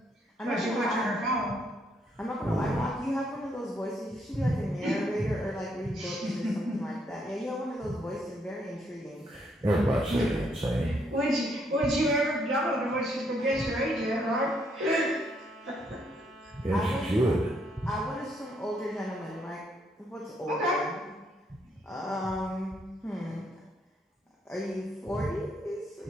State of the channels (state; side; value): normal; both; correlation 0.73